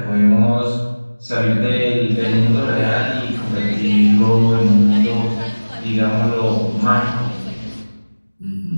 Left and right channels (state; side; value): inverted; both; correlation -1.00